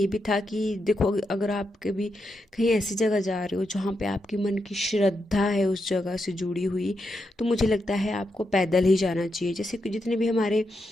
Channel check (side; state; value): both; normal; correlation 0.84